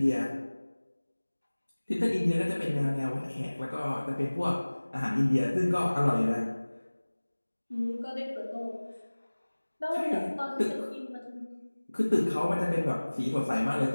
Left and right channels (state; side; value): inverted; both; correlation -1.00